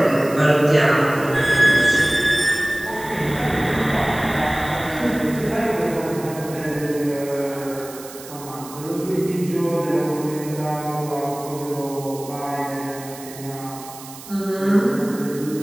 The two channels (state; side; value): noise; right; hiss, 16 dB below the sound